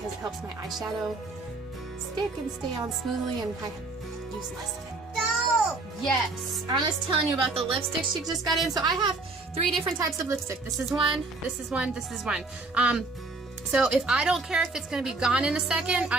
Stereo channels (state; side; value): quieter; left; 3.4 dB